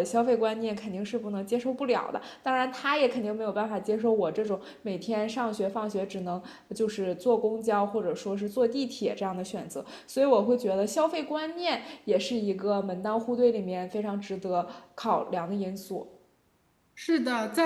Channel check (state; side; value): identical; both; correlation 1.00